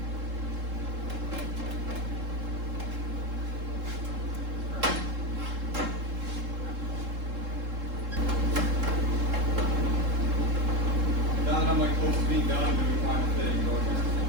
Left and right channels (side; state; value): left; late; 3.7 ms